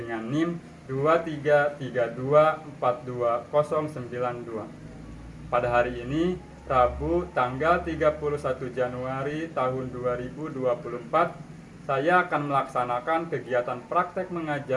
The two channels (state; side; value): identical; both; correlation 1.00